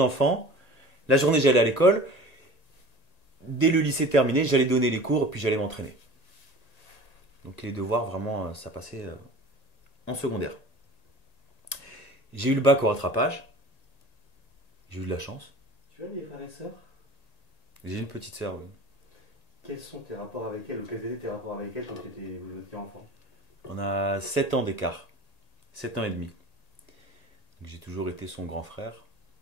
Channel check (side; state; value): right; late; 1.9 ms